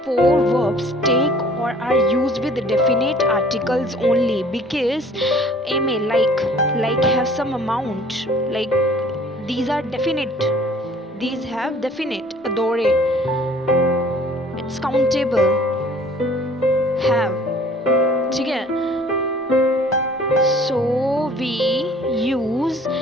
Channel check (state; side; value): normal; both; correlation 0.54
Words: 4 verbs take or are used with definite articles only, because aimer, like have some amount, like these are definite, these have definite. Adorer, it's countable, have. ठीक है? So we use